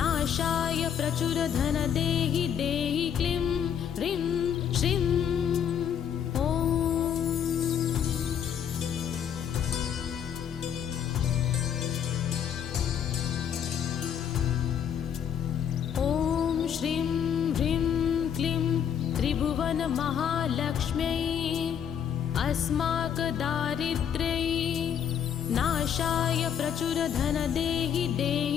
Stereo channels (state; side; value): quieter; right; 8.5 dB